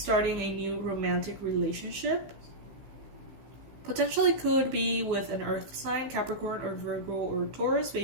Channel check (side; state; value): left; late; 15 ms